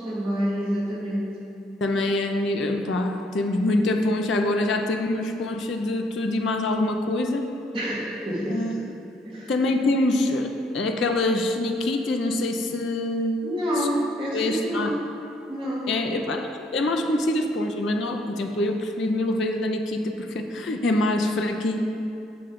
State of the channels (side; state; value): both; normal; correlation 0.66